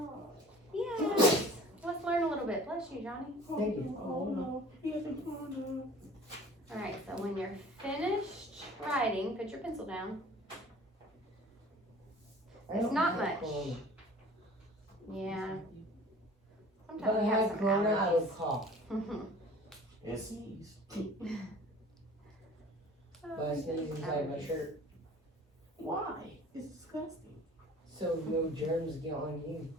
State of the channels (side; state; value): both; normal; correlation 0.46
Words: Yes. Let's learn a little bit. Bless you, Johnny. Thank you. Oh no. He has a corner. All right, so when you're finished writing, put your pencil down. I don't not have much. Corona. Yeah. If Sometimes I we have had some corona, I would allergies. cough. And sneeze. But I sneeze inside my shirt. Why? It's disgusting. So no germs get on you.